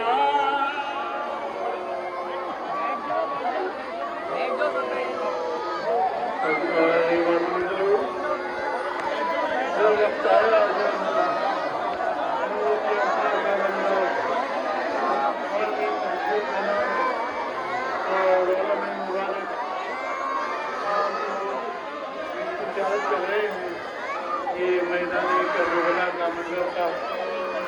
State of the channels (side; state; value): both; identical; correlation 1.00